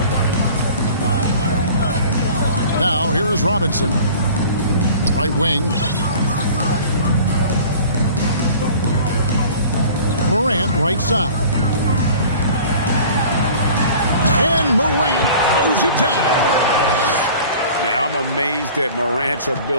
Now here is Robinson. Right wing. Morant right side. And Morant throws it down. Yeah, I'm amazed at Morant's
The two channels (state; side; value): inverted; both; correlation -0.45